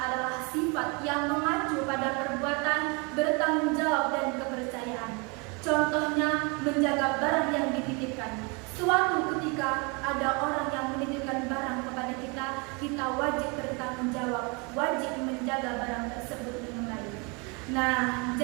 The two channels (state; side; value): quieter; left; 31.1 dB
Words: sifat yang mengacu pada perbuatan, bertanggung jawab, dan kepercayaan. Contohnya, menjaga barang yang dititipkan. Suatu ketika ada orang yang menitipkan barang kepada kita, kita wajib bertanggung jawab, wajib menjaga barang tersebut dengan baik. Nah,